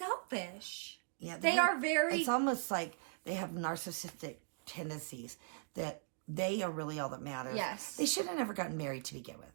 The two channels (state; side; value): silent; left; digital silence